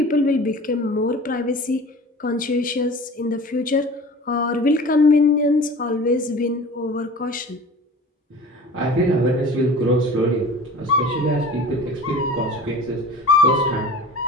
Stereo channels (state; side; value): normal; both; correlation 0.40